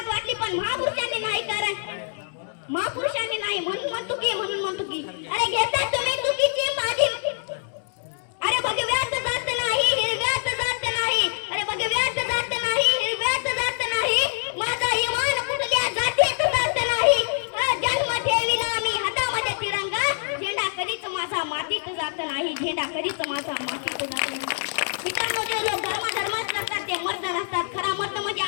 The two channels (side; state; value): right; silent; digital silence